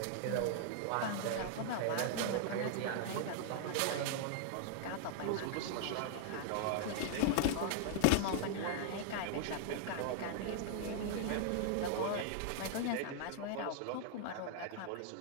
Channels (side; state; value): both; different; correlation 0.00